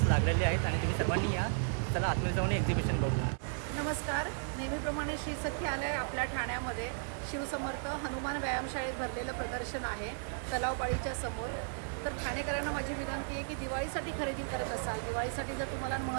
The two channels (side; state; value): left; silent; 55 dB below the other